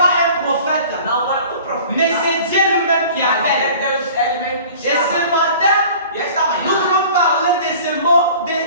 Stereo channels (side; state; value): both; inverted; correlation -0.45